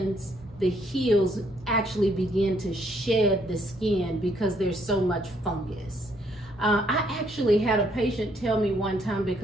the heels actually begin to shed the skin because there's so much fungus. I actually had a patient tell me one time,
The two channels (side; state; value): both; normal; correlation 0.69